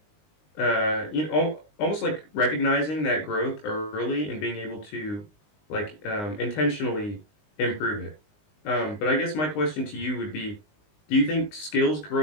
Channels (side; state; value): right; late; 19 ms